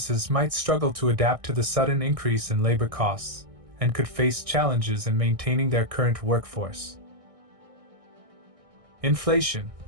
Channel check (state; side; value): late; left; 1.6 ms